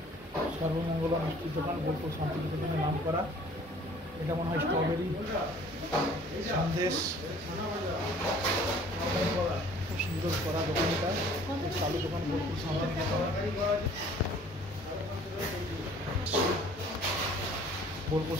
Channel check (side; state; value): both; normal; correlation 0.53